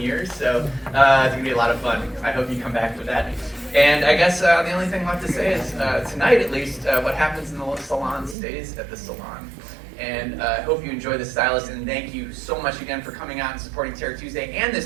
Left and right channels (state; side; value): drops out; left; at 8.3 s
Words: years, so it's gonna be a lot of fun. I hope you come back for that. And I guess the only thing left to say is, tonight at least, what happens in the salon stays at the salon. And I hope you enjoy The Stylist, and thank you so much again for coming out and supporting Terror Tuesday and